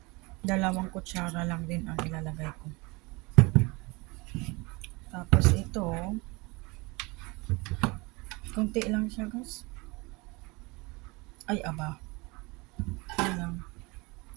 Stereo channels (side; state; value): left; quieter; 25.8 dB